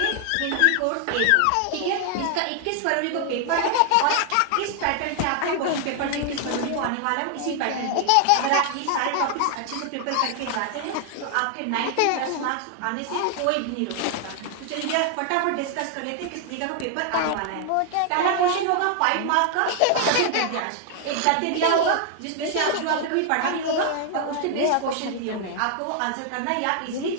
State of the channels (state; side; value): different; both; correlation 0.00